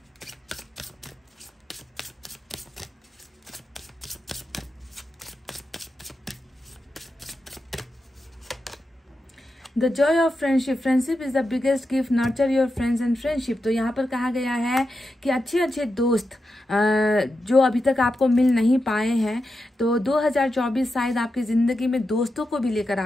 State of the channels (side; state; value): both; normal; correlation 0.89